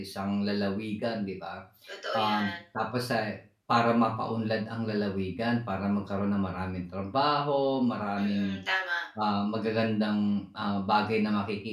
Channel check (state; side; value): identical; both; correlation 1.00